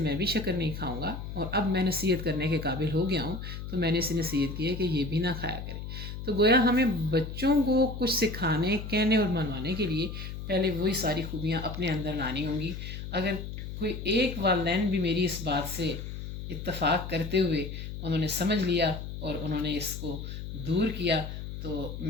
بھی شکر نہیں کھاؤں گا، اور اب میں نصیحت کرنے کے قابل ہو گیا ہوں، تو میں نے اسے نصیحت کی ہے کہ یہ بھی نہ کھایا کرے۔ تو گویا ہمیں بچوں کو کچھ سکھانے، کہنے اور منوانے کے لیے پہلے وہی ساری خوبیاں اپنے اندر لانی ہوں گی۔ اگر کوئی ایک والدین بھی میری اس بات سے اتفاق کرتے ہوئے انہوں نے سمجھ لیا اور انہوں نے اس کو دور کیا، تو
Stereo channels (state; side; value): noise; left; hum, 8 dB below the sound